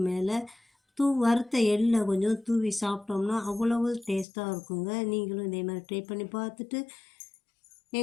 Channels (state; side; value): drops out; right; at 4.2 s